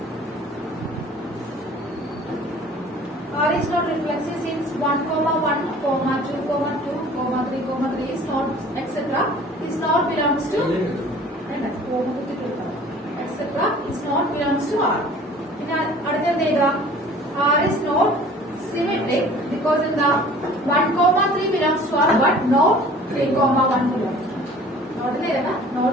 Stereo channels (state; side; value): normal; both; correlation 0.48